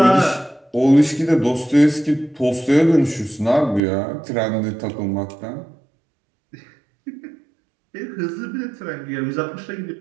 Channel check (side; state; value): left; drops out; at 3.8 s